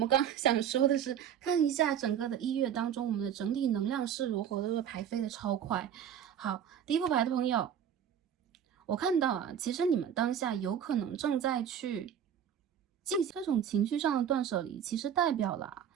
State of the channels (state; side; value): quieter; left; 9.0 dB